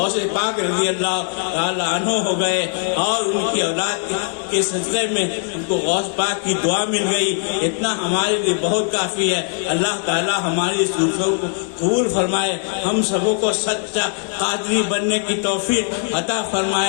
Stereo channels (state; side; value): silent; right; 58 dB below the other